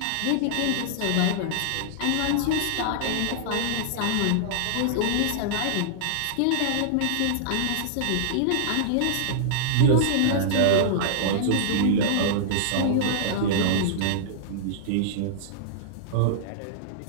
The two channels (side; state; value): both; different; correlation -0.02